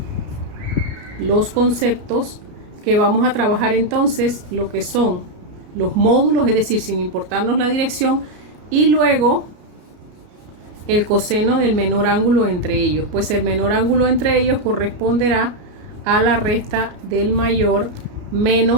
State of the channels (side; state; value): left; late; 33 ms